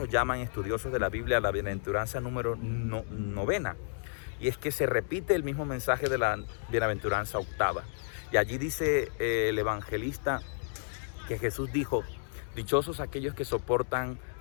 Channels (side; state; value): right; silent; digital silence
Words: llaman estudiosos de la Biblia, la bienaventuranza número novena. Y es que se repite el mismo mensaje de la bienaventuranza octava. Y allí dice el evangelista que Jesús dijo, dichosos aquellos que soportan